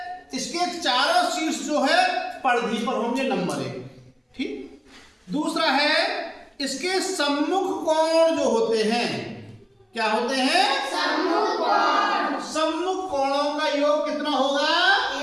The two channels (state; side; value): identical; both; correlation 1.00